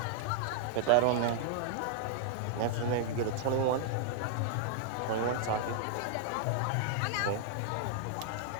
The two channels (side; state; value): both; different; correlation -0.01